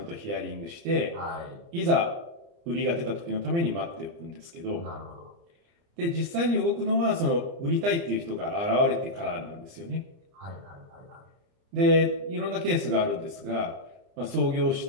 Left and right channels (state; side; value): late; left; 30 ms